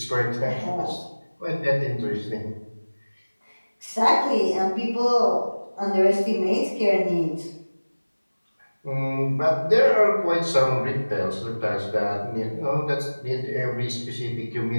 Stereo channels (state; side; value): inverted; both; correlation -1.00